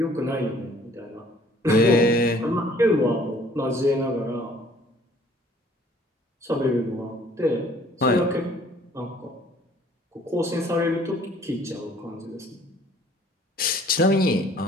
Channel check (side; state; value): both; normal; correlation 0.57